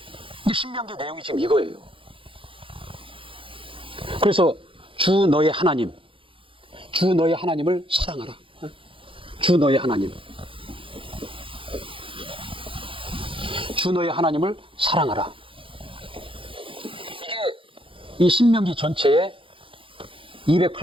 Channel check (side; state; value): left; late; 0.25 ms